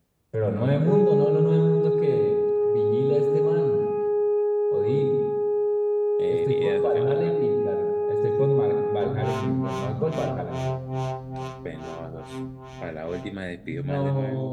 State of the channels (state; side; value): identical; both; correlation 1.00